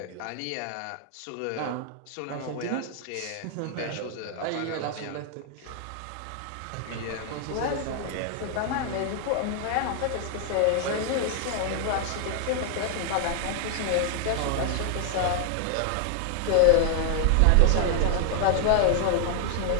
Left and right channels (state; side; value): different; both; correlation 0.00